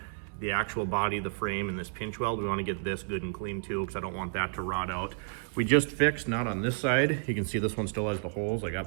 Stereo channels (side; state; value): left; silent; digital silence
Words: the actual body, the frame, and this pinch weld. We wanna get this good and clean too, because I don't want that to rot out. We just fixed, not on this side. You can see this one still has the holes. I